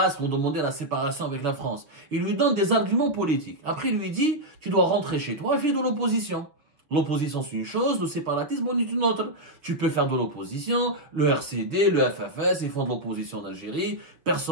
ont demandé la séparation avec la France? Il lui donne des arguments politiques. Après, il lui dit, tu dois rentrer chez toi et faire de l'opposition. L'opposition, c'est une chose, le séparatisme, c'est une autre. Tu peux faire de l'opposition, le RCD, le FFS, ils font de l'opposition en Algérie,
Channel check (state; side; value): late; left; 6.0 ms